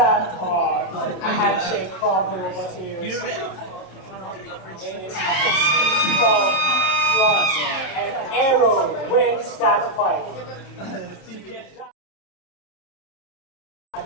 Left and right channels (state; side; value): late; right; 27 ms